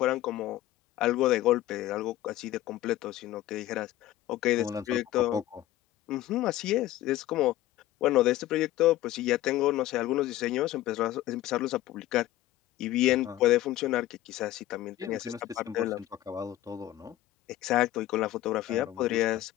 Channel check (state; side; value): quieter; right; 14.8 dB